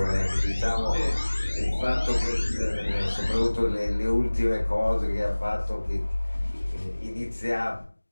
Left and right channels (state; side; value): inverted; both; correlation -1.00